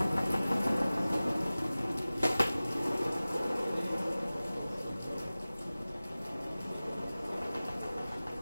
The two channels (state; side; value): inverted; both; correlation -0.98